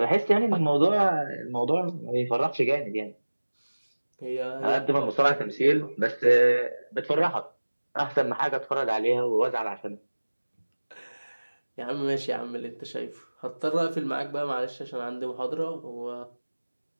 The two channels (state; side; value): inverted; both; correlation -1.00